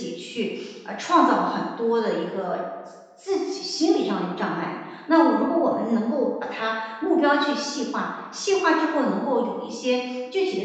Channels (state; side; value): identical; both; correlation 1.00